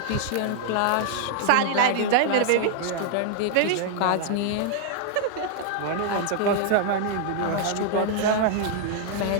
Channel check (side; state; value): both; different; correlation -0.01